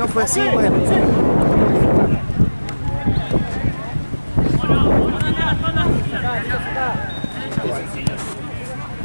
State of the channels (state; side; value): inverted; both; correlation -1.00